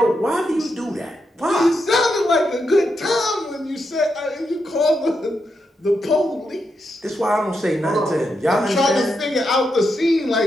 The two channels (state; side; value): normal; both; correlation 0.84